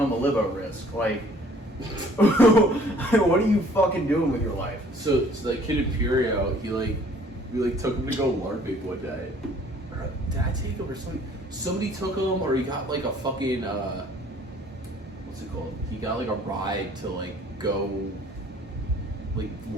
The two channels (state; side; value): normal; both; correlation 0.56